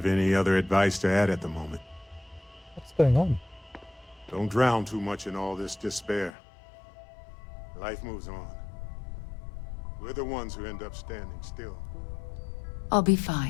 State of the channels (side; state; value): right; drops out; at 6.3 s